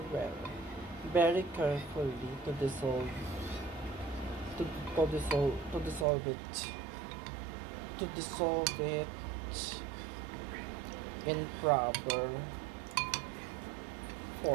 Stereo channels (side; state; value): left; drops out; at 6.1 s